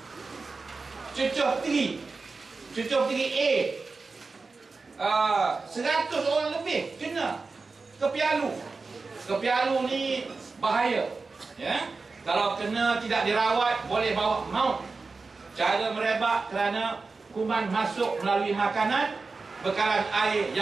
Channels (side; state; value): left; quieter; 4.1 dB